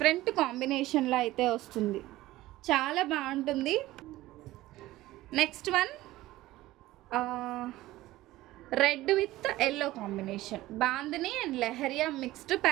కాంబినేషన్లో అయితే వస్తుంది. చాలా బాగుంటుంది. Next one red with yellow combination, bandhani and leheriya mixed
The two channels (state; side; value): quieter; left; 16.9 dB